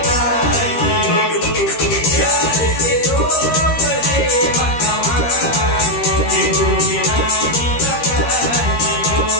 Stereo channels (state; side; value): late; right; 13 ms